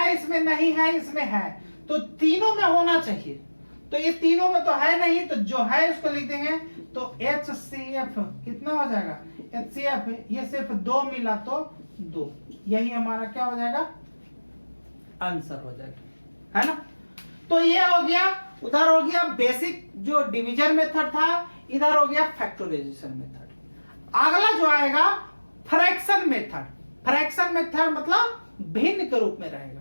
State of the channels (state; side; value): inverted; both; correlation -1.00